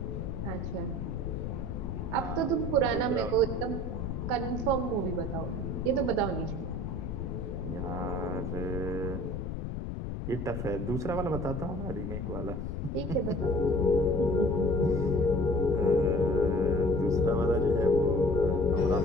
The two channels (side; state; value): left; noise; rumble, 4 dB below the sound